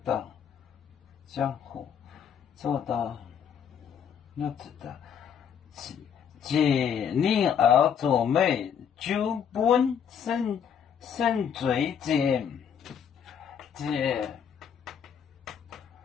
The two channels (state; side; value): quieter; right; 7.8 dB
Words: 当江湖做到要知道，借令而作美，就本生罪见，借